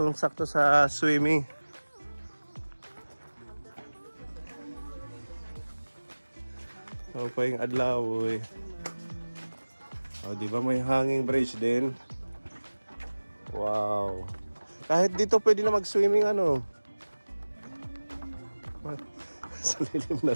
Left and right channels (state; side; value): inverted; both; correlation -1.00